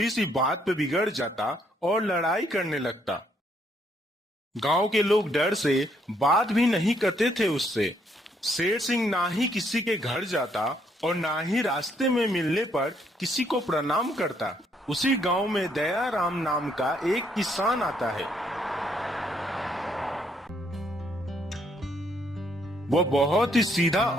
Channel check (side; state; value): both; normal; correlation 0.70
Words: सी बात पे बिगड़ जाता और लड़ाई करने लगता। गांव के लोग डर से बात भी नहीं करते थे उससे। शेर सिंह ना ही किसी के घर जाता और ना ही रास्ते में मिलने पर किसी को प्रणाम करता। उसी गांव में दयाराम नाम का एक किसान आता है। वो बहुत ही सीधा